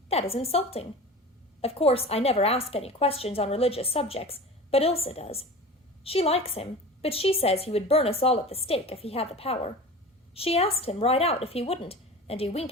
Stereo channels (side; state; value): both; normal; correlation 0.35